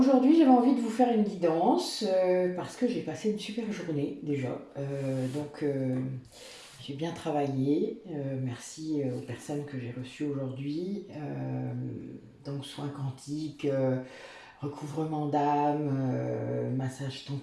j'avais envie de vous faire une guidance parce que j'ai passé une super journée déjà. J'ai bien travaillé. Merci aux personnes que j'ai reçues aujourd'hui. Donc soins quantiques, recouvrement d'âme, massage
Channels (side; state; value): both; identical; correlation 1.00